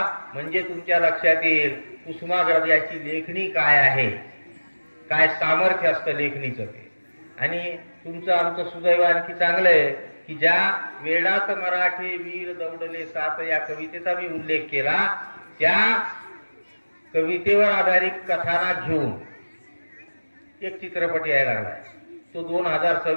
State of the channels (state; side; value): inverted; both; correlation -1.00